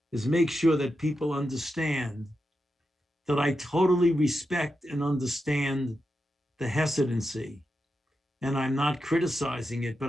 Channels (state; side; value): normal; both; correlation 0.88